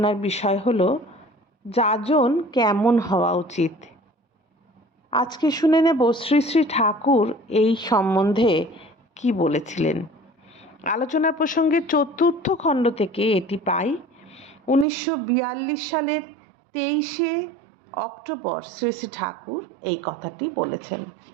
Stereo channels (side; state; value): left; drops out; at 14.9 s